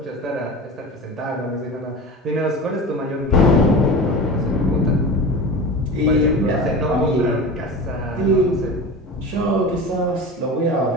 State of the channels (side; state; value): both; normal; correlation 0.31